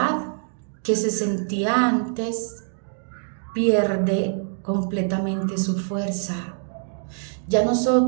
que se sentía antes pierde completamente su fuerza. Ya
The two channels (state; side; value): silent; left; digital silence